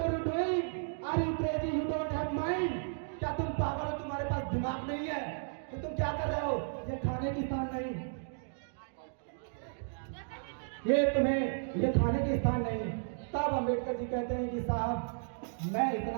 you doing, are you crazy, you don't have mind, क्या तुम पागल हो, तुम्हारे पास दिमाग नहीं है, तो तुम क्या कर रहे हो, ये खाने की स्थान नहीं, ये खाने के स्थान नहीं। तब अम्बेडकर जी कहते हैं कि साहब मैं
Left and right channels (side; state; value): left; silent; digital silence